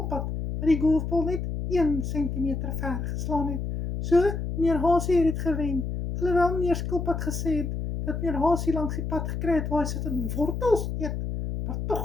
wat die golfbal net 1 sentimeter ver geslaan het. So, meneer Hasie het dit gewen. Alhoewel meneer Skilpad gesê het dat meneer Hasie langs die pad gekry het waar hy sit in wortels eet. Maar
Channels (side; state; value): left; noise; hum, 4 dB below the sound